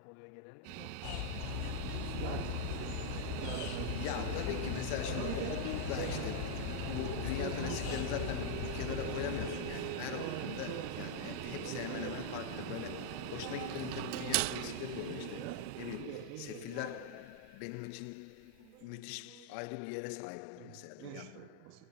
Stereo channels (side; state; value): both; different; correlation -0.01